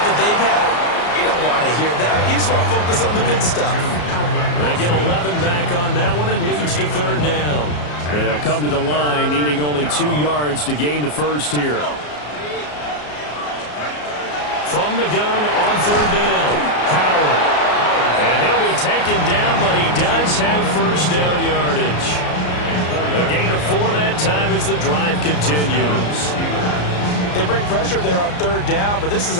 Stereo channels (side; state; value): right; late; 34 ms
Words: that they've had, you don't want to hear that. You just want to focus on the good stuff. They get 11 back on that one. It leads to third down. They'll come to the line, needing only 2 yards to gain the first here. From the gun on third down, Howard. And he'll be taken down, but he does have first down yardage. A gain of 4 that time as the drive continues. They bring pressure there on third down, but this is